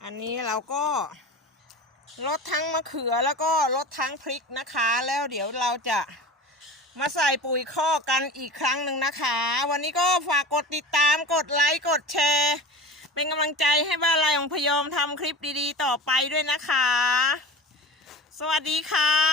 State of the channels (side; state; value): both; normal; correlation 0.34